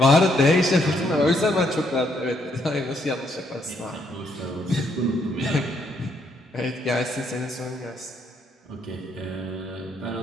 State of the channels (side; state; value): both; normal; correlation 0.72